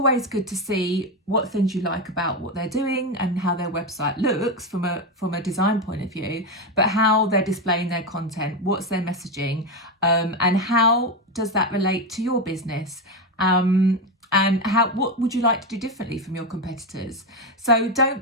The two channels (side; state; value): both; normal; correlation 0.12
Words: good to see what things you like about what they're doing and how their website looks from a design point of view, but how they're displaying their content, what's their messaging, and how does that relate to your business? And what would you like to do differently from your competitors? So